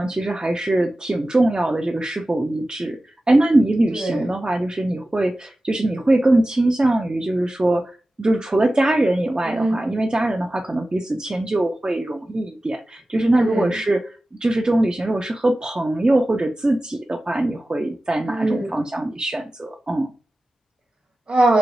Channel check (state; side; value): normal; both; correlation 0.95